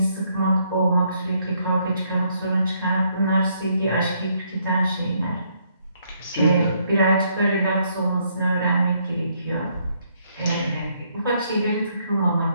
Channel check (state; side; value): inverted; both; correlation -0.71